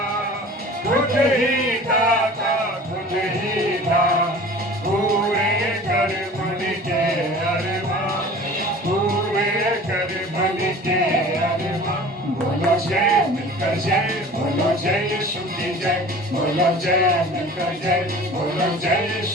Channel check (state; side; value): normal; both; correlation 0.42